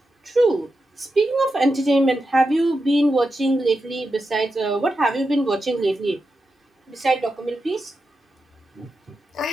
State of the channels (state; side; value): normal; both; correlation 0.89